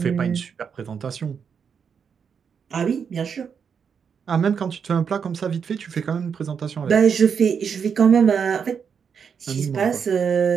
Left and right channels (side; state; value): left; quieter; 6.8 dB